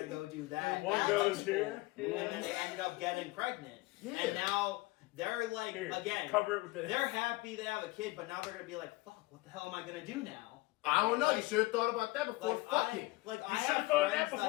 go do that. One That's goes cool. here. And then they ended up getting pregnant. Yeah. And now they're like, Here, again, cover it with this. they're happy they have a kid, but now they're gonna be like, fuck, what the hell am I gonna do now? I don't know. You should have thought about that before Like, fucking. I You have should've thought of that friends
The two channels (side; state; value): right; quieter; 21.3 dB